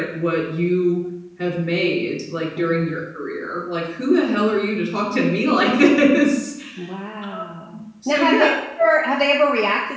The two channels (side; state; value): both; identical; correlation 1.00